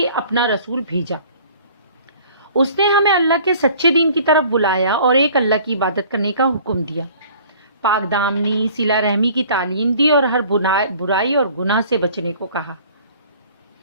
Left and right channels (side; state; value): both; inverted; correlation -0.51